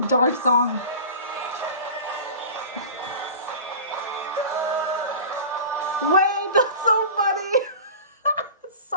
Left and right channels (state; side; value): inverted; both; correlation -0.36